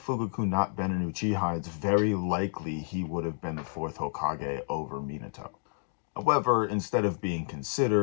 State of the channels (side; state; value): right; silent; digital silence